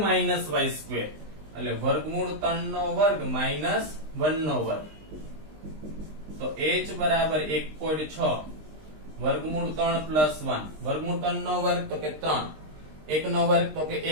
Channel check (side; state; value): left; late; 20 ms